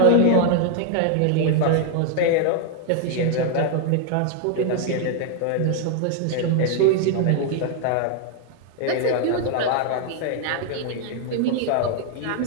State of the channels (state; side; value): different; both; correlation 0.00